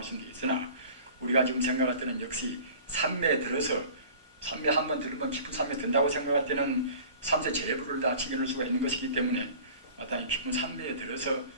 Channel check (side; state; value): both; inverted; correlation -0.43